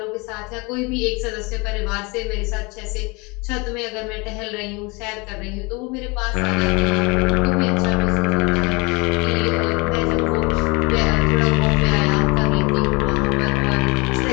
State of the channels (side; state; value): right; quieter; 27.4 dB